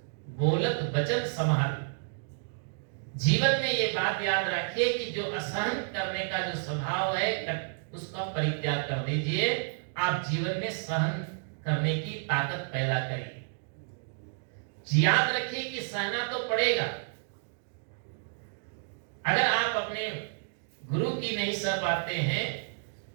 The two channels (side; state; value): left; silent; digital silence